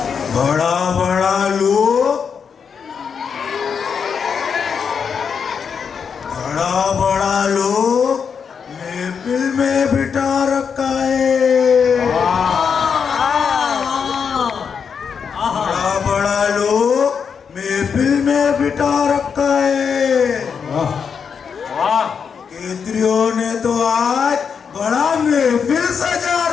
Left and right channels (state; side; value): quieter; right; 6.5 dB